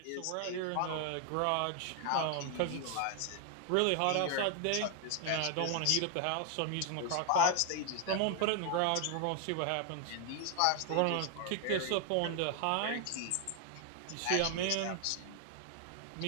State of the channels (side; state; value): both; different; correlation 0.00